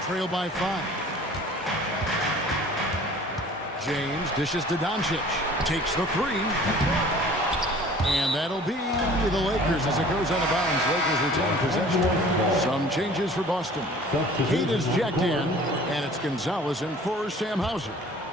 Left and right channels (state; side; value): normal; both; correlation 0.48